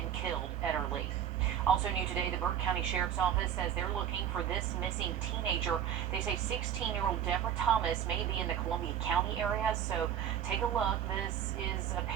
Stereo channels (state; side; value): quieter; left; 9.5 dB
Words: killed Ederle. Also new today, the Burke County Sheriff's Office says they're looking for this missing teenager. They say 16-year-old Deborah Thomas may be in the Columbia County area, so take a look. This is a